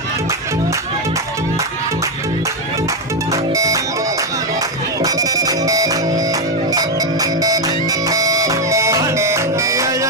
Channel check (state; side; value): normal; both; correlation 0.05